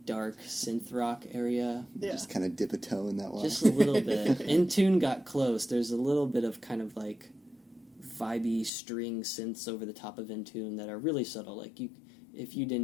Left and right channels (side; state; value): right; drops out; at 8.7 s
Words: dark synth rock area. Yeah. Just kind of dip a toe in that one. Just a little bit. In Tune got close. There's a little bit of kind of like vibey string synths over the top of In Tune that are really subtle. Like if you